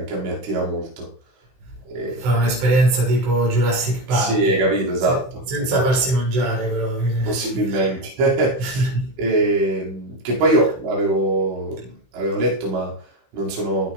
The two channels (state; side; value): late; left; 15 ms